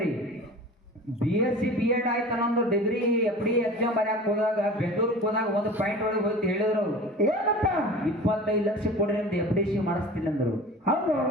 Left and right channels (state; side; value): normal; both; correlation 0.38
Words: BSc B.Ed ಆಯ್ತು ಅನ್ನೊಂದು ಡಿಗ್ರಿ FD ಎಕ್ಸಾಮ್ ಬರ್ಯಾಕ ಹೋದಾಗ ಬೆಂಗಳೂರಿಗೆ ಹೋದಾಗ ಒಂದು ಪಾಯಿಂಟ್ ಒಳಗೆ ಹೋಗಿ ಹೇಳಿದ್ರು ಅವ್ರು ಏನಪ್ಪ 25 ಲಕ್ಷ ಕೊಡ್ರಿ ಅಂತ FDC ಮಾಡಿಸ್ತೀನಿ ಅಂದ್ರು. ಹೌದು.